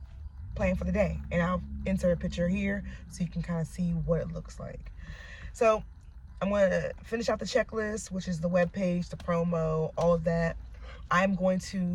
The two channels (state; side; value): identical; both; correlation 1.00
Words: planned for the day. And I'll insert a picture here so you can kind of see what it looks like. So I'm going to finish out the checklist, which is the webpage, the promo, all of that. I'm going